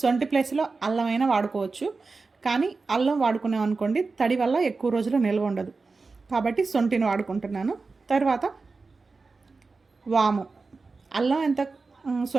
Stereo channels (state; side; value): quieter; left; 4.1 dB